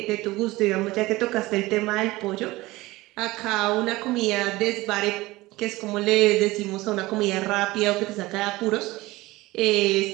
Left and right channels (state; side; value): quieter; left; 19.7 dB